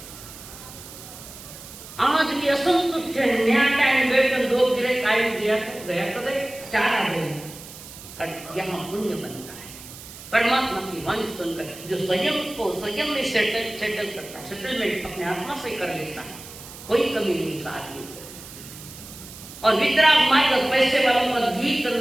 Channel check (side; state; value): right; noise; hiss, 15 dB below the sound